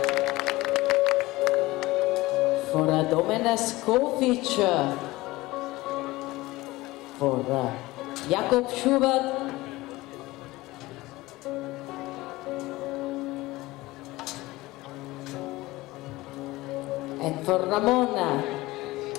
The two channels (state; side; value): quieter; right; 19.7 dB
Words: for Domen Skofic, for Jakob Schubert, and for Ramon.